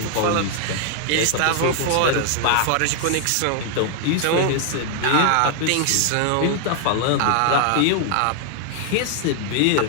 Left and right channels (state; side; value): different; both; correlation 0.00